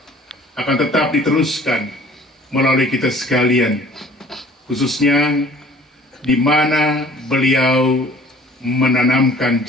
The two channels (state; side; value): normal; both; correlation 0.52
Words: akan tetap diteruskan melalui kita sekalian, khususnya di mana beliau menanamkan